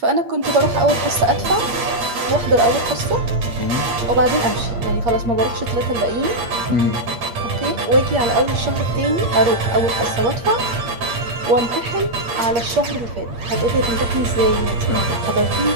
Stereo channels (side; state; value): left; late; 8.8 ms